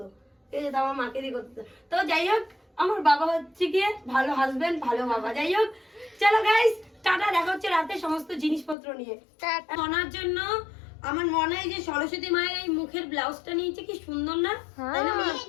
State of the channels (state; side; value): drops out; right; at 8.8 s